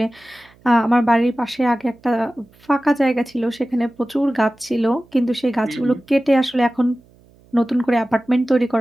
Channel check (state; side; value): noise; right; hum, 29 dB below the sound